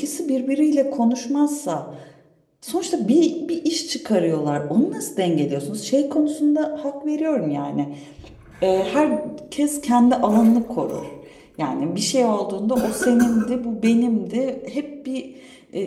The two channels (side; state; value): both; identical; correlation 1.00